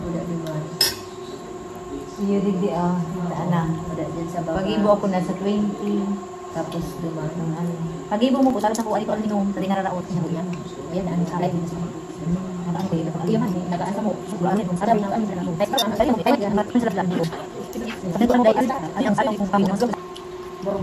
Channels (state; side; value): identical; both; correlation 1.00